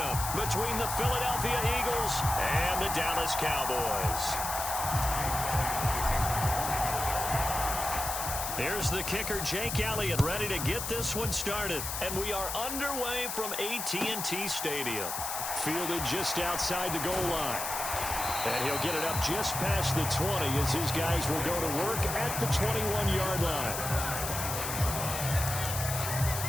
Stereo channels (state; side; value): noise; left; hiss, 4 dB below the sound